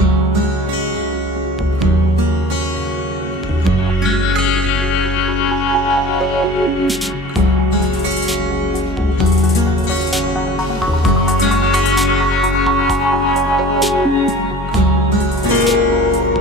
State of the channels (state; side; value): normal; both; correlation 0.43